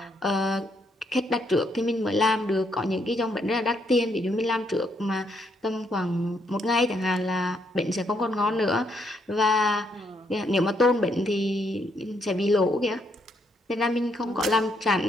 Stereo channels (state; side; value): normal; both; correlation 0.74